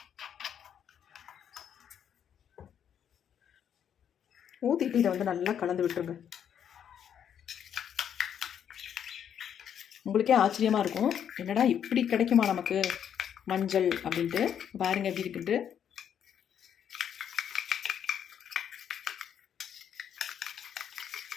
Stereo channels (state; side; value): quieter; right; 8.9 dB